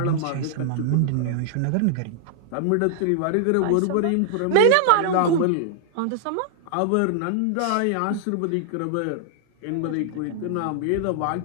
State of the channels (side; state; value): both; different; correlation 0.00